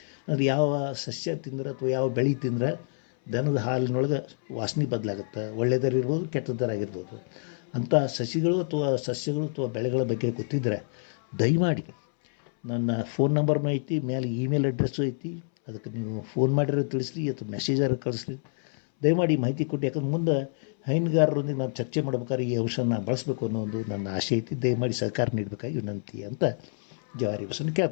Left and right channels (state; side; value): silent; right; 60 dB below the other